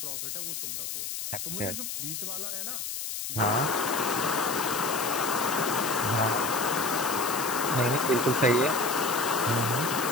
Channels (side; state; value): left; noise; hiss, 5 dB below the sound